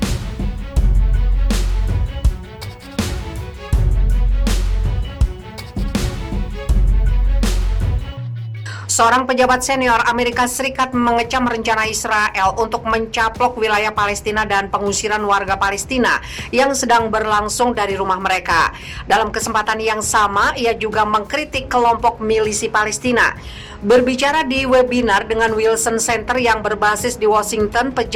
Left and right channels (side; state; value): both; identical; correlation 1.00